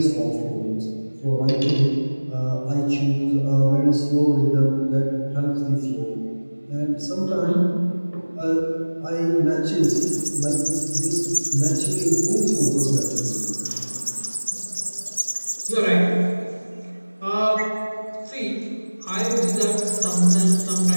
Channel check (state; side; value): inverted; both; correlation -1.00